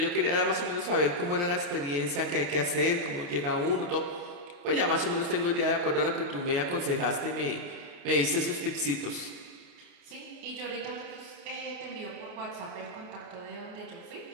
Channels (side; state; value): left; late; 28 ms